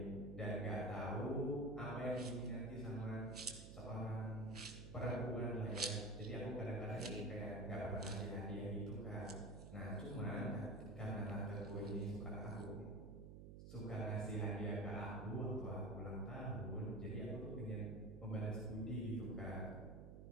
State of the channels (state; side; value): noise; right; hum, 11 dB below the sound